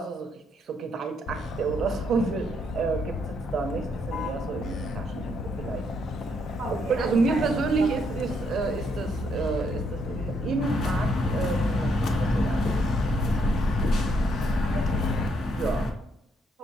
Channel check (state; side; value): normal; both; correlation 0.73